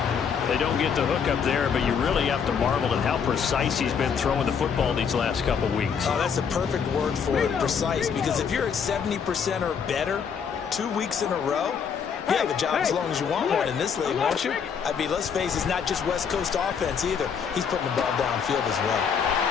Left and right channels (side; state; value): right; quieter; 6.8 dB